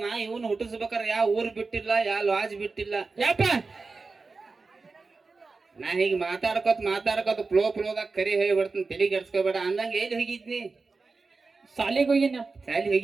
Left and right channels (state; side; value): quieter; left; 4.1 dB